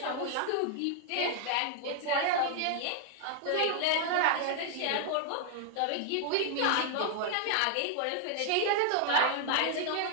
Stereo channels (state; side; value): different; both; correlation 0.00